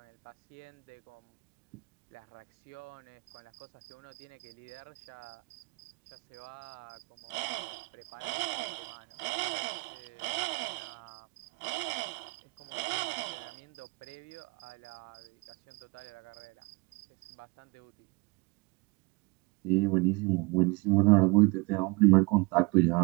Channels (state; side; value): quieter; left; 27.1 dB